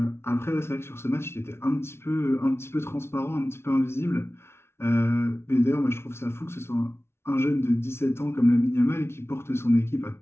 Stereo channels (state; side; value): late; right; 0.12 ms